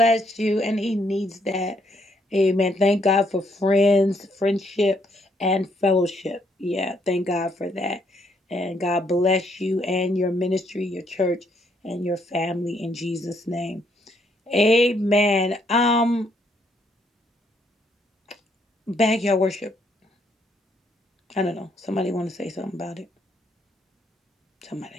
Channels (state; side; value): normal; both; correlation 0.71